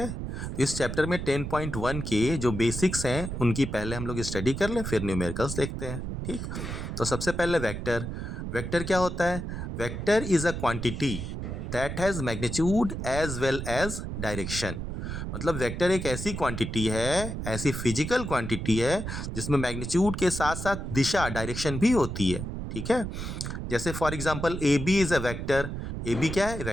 इस चैप्टर में 10.1 के जो बेसिक्स हैं उनकी पहले हम लोग स्टडी कर लें, फिर न्यूमेरिकल्स देखते हैं। ठीक, तो सबसे पहले वेक्टर। वेक्टर क्या होता है? Vector is a quantity that has magnitude as well as direction. मतलब वेक्टर एक ऐसी क्वांटिटी है, ऐसी फिजिकल क्वांटिटी है जिसमें मैग्नीट्यूड के साथ साथ दिशा, डायरेक्शन भी होती है। ठीक है, जैसे for example A B is a vector. A B क्या है?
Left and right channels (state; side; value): noise; right; rumble, 5 dB below the sound